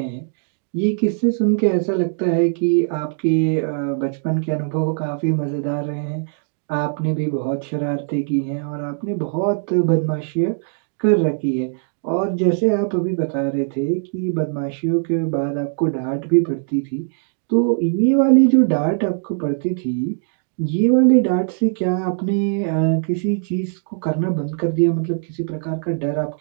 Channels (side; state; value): left; silent; digital silence